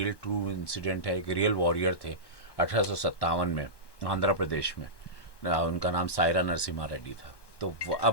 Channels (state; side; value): late; right; 1.1 ms